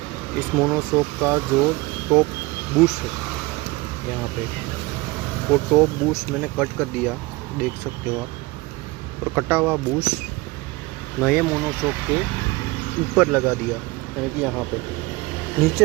इस मोनोशॉक का जो टॉप बूश है यहाँ पे, वो टॉप बूश मैंने कट कर दिया, देख सकते हो आप। और कटा हुआ बूश नए मोनोशॉक के ऊपर लगा दिया, यानी कि यहाँ पे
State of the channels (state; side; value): quieter; left; 22.2 dB